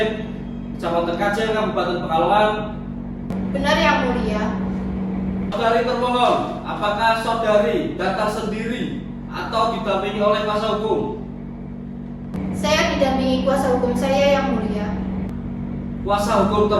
Kecamatan Kajen, Kabupaten Pekalongan? Benar yang mulia. Saudari termohon, apakah saudari datang sendiri atau didampingi oleh kuasa hukum? Saya didampingi kuasa hukum saya yang mulia. Kuasa hukum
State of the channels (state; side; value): identical; both; correlation 1.00